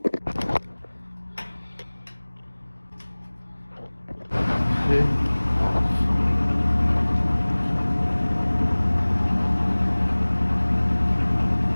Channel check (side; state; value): both; inverted; correlation -1.00